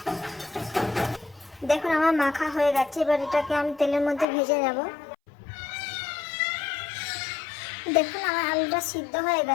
দেখুন আমার মাখা হয়ে গেছে। এবার এটাকে আমি তেলের মধ্যে ভেজে নেব। দেখুন আমার আলুটা সিদ্ধ হয়ে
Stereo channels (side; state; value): right; drops out; at 4.2 s